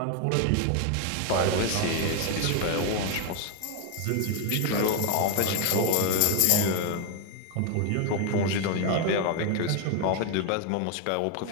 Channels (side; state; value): both; different; correlation 0.01